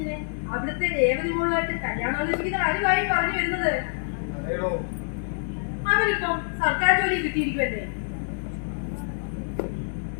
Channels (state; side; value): silent; right; digital silence